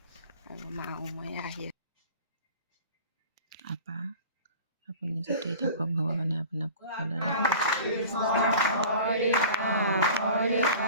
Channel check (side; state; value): both; inverted; correlation -0.41